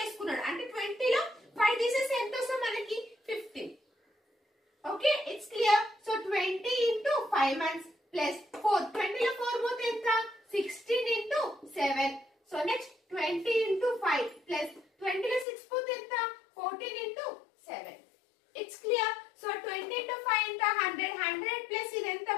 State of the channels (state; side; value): drops out; right; at 15.5 s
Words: అంటే 20 లో 5 తీసేసి ఎంత వస్తుంది మనకి 15. Okay, it's clear. So 20 into 5 months plus 4, 20 లో 4 పోతే ఎంత 16 into 7. So next 20 into 5 plus 20 లో 6 పోతే ఎంత 14 into 7. It's clear. So 20 into 5 ఎంత 100 ప్లస్ ఇది ఎంత